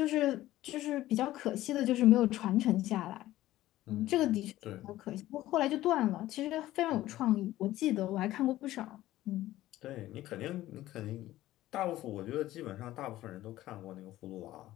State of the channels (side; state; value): right; quieter; 15.2 dB